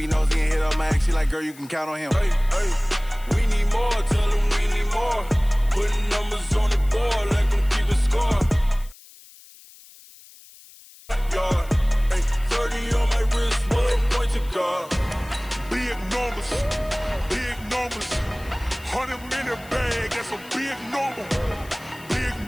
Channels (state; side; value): noise; left; hiss, 22 dB below the sound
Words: nosy and hit up my ex. She like, girl, you can count on him. Hey, we need more, tell them we need more. Putting numbers on the board, let them keep the score. Hey, 30 on my wrist, one point to God. Big numbers, 100 minute bag, that's a big number. Big